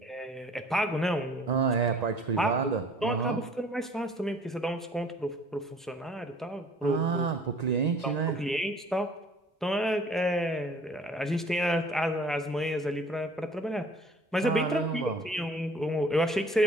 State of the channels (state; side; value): normal; both; correlation 0.52